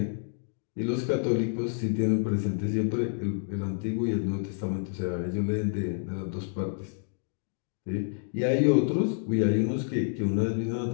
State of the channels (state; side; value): silent; right; digital silence